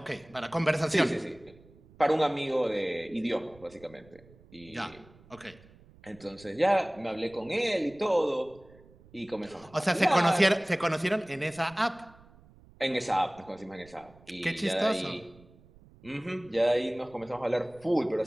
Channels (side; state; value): right; noise; rumble, 25 dB below the sound